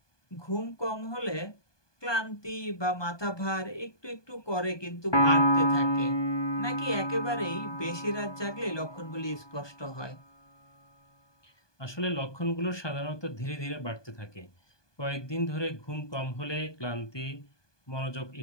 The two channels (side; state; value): right; late; 1.2 ms